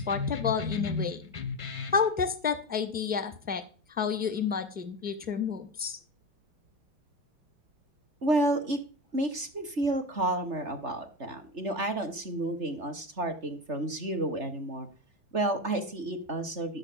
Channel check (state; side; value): late; left; 3.3 ms